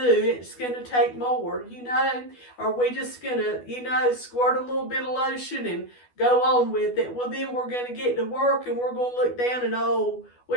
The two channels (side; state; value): right; late; 12 ms